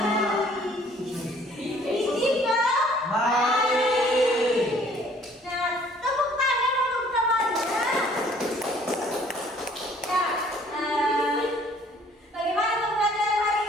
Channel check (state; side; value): normal; both; correlation 0.57